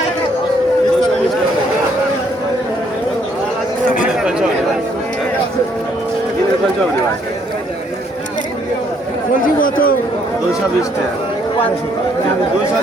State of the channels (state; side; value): normal; both; correlation 0.68